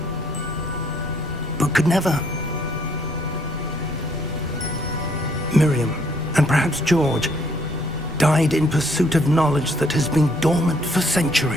but could never. Miriam, and perhaps George, died in pursuit of knowledge that has been dormant for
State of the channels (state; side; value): normal; both; correlation 0.67